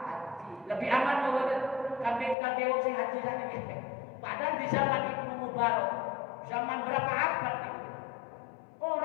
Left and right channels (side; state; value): right; drops out; at 2.4 s